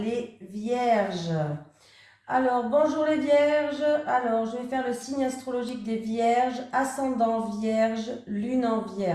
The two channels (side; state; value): both; identical; correlation 1.00